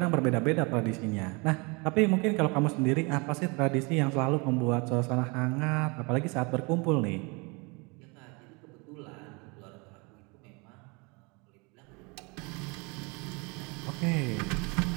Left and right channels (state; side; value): quieter; left; 29.2 dB